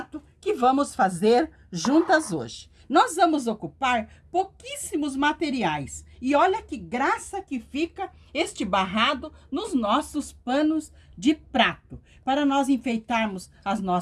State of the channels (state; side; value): identical; both; correlation 1.00